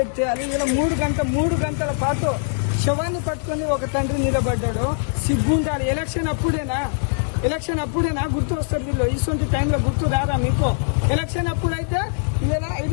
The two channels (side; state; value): right; silent; digital silence